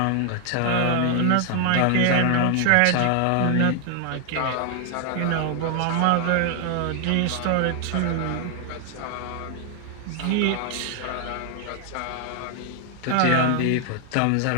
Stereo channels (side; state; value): both; different; correlation 0.00